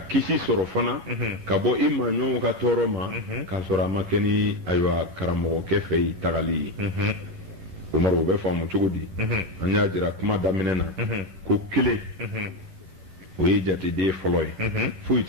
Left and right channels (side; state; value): left; late; 11 ms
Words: kisi sɔrɔ fana ka bɔ i maaɲɔgɔnw ka tɔɔrɔ ma k'a sɔrɔ a ma kɛ ni ayiwa karamɔgɔkɛ fɛ yen tagali ye Umaru o bɛ faamu cogo di an y'a jira kuma daminɛ na ko kelen o ye jateden fɔlɔ ye foyi